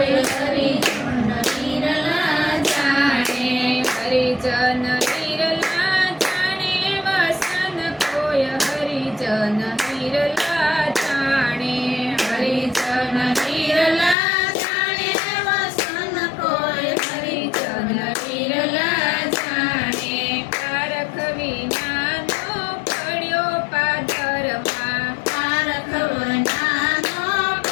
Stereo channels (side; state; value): right; drops out; at 14.2 s